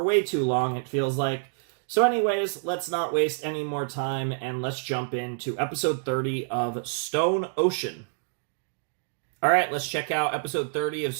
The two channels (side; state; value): left; silent; digital silence